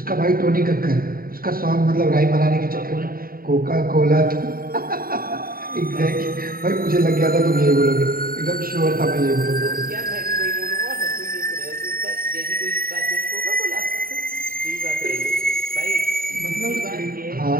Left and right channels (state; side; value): late; left; 0.43 ms